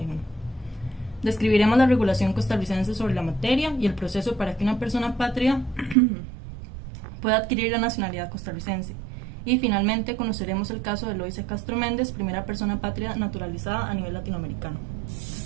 Describiremos la regulación costarricense sobre la materia y el proceso para que una persona apátrida pueda adquirir la nacionalidad costarricense. Y finalmente conoceremos el caso de Eloísa Castro Méndez, primera persona apátrida naturalizada a nivel latinoamericano.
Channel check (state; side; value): drops out; left; at 6.0 s